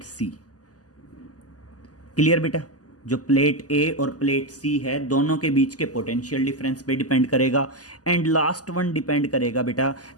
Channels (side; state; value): right; late; 0.67 ms